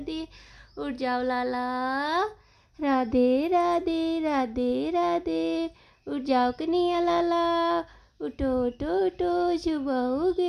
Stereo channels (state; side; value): identical; both; correlation 1.00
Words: दिए। उठ जाओ लाला, राधे राधे, राधे राधे, उठ जाओ कन्हैया लाला, उठो उठो उठो, सुबह हो